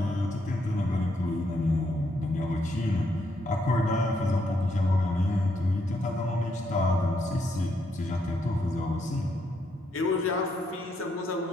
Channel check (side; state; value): both; normal; correlation 0.76